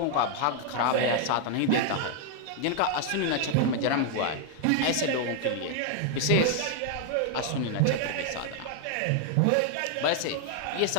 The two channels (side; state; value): both; different; correlation 0.00